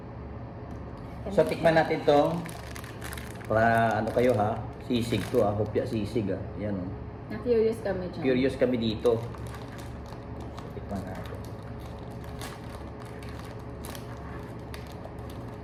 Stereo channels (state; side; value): identical; both; correlation 1.00